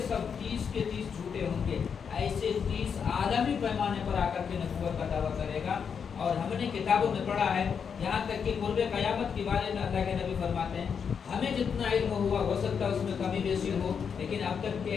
سب 30 کے 30 جھوٹے ہوں گے. ایسے 30 عالمی پیمانے پر آ کر کے نبوت کا دعویٰ کرے گا. اور ہم نے کتابوں میں پڑھا ہے, یہاں تک کہ قرب قیامت کے بارے میں اللہ کے نبی فرماتے ہیں ہمیں جتنا علم ہوا ہو سکتا ہے اس میں کمی بیشی ہو, لیکن اب تک کے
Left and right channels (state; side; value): quieter; right; 6.7 dB